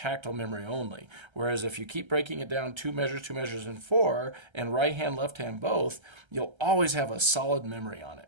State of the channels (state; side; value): late; left; 1.3 ms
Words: memory only. Whereas if you keep breaking it down 2 measures, and 4, and right hand, left hand both, you'll always have a solid memory on it,